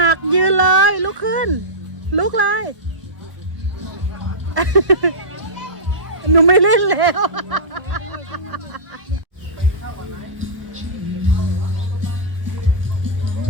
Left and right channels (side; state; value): left; late; 1.2 ms